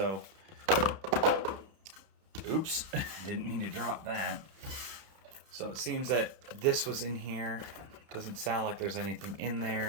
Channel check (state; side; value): late; left; 31 ms